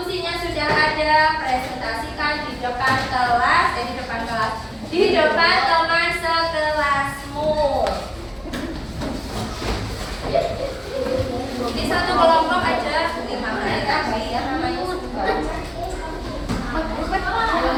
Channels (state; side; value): identical; both; correlation 1.00